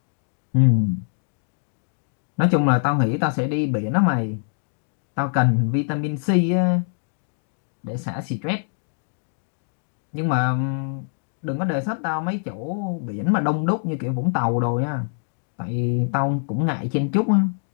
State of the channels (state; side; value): silent; right; digital silence